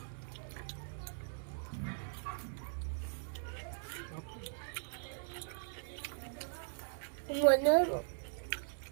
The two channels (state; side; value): silent; left; 51 dB below the other